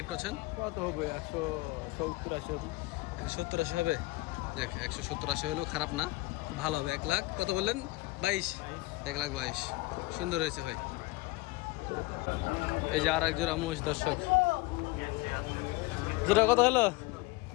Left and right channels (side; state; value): right; quieter; 21.5 dB